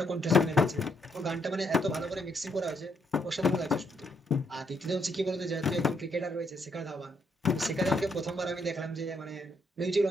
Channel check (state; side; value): normal; both; correlation 0.75